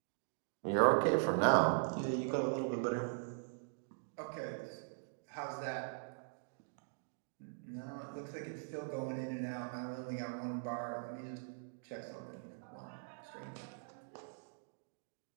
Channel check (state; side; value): silent; left; digital silence